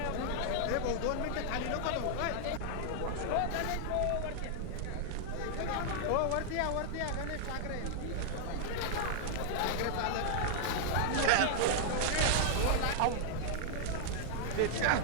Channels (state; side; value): different; both; correlation 0.00